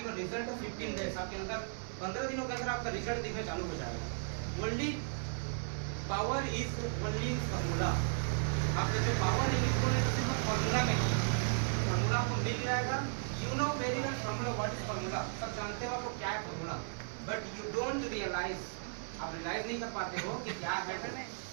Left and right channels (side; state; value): left; silent; 54 dB below the other